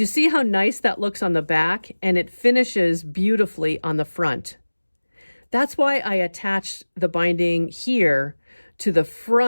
see how nice that looks on the back, and it finishes beautifully on the front. That's why I attached the binding here to the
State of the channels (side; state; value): both; inverted; correlation -1.00